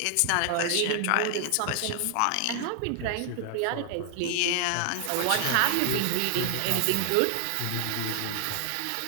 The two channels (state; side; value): different; both; correlation 0.00